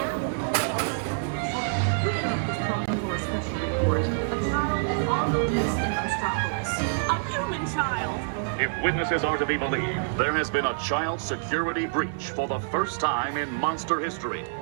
For a special report. A child is on the loose in Metropolis. A human child. If witnesses are to be believed, there has been a child security breach for the first time in monster history.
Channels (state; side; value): silent; left; digital silence